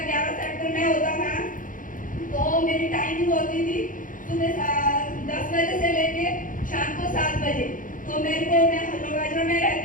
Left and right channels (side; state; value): right; late; 0.39 ms